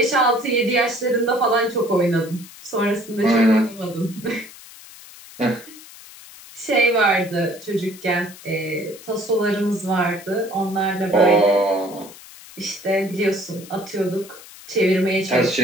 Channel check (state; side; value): noise; left; hiss, 19 dB below the sound